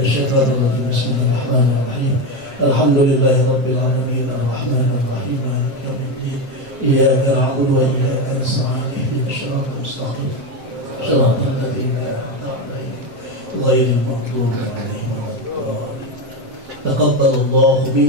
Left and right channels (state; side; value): late; left; 7.6 ms